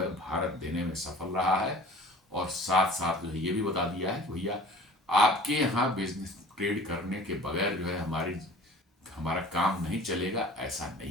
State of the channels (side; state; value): both; normal; correlation 0.45